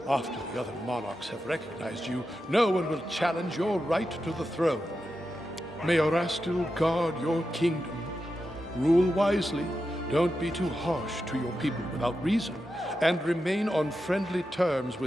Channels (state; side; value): normal; both; correlation 0.89